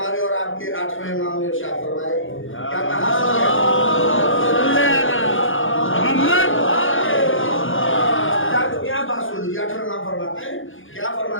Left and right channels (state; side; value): late; right; 0.58 ms